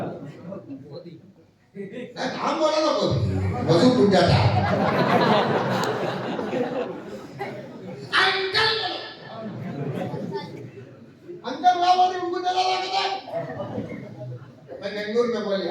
हम बोला ना, कोई वजू टूट जाता है। अंकल वहां बोली उनको दिलाना का क्या। मैं बेंगलुरु में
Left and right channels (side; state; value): both; identical; correlation 1.00